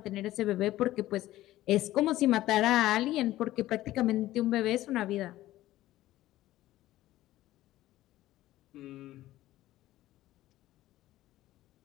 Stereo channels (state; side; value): quieter; right; 15.3 dB